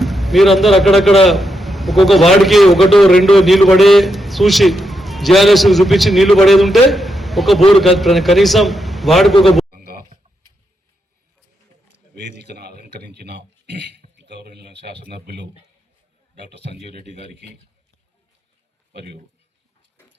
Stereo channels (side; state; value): both; normal; correlation 0.83